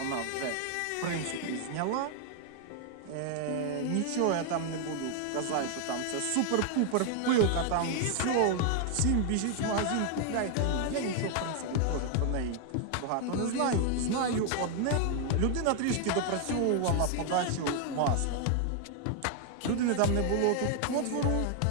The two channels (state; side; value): different; both; correlation 0.00